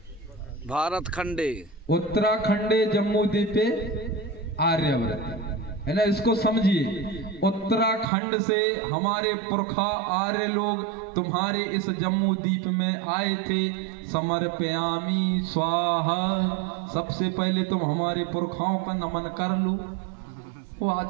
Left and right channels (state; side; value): drops out; left; at 8.1 s